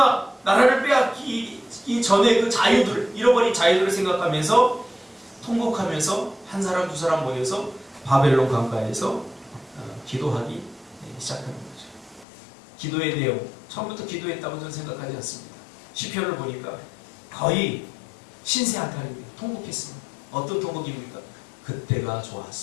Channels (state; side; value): drops out; right; at 12.2 s